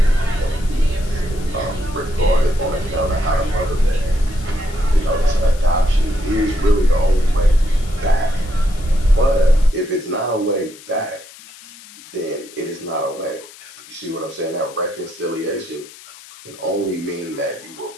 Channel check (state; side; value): noise; left; hiss, 20 dB below the sound